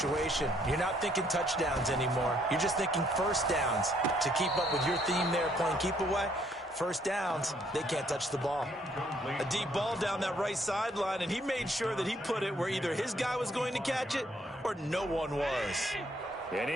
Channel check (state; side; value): normal; both; correlation 0.67